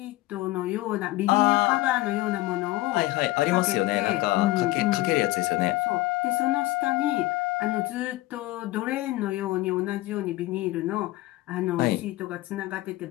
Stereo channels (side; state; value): right; quieter; 18.4 dB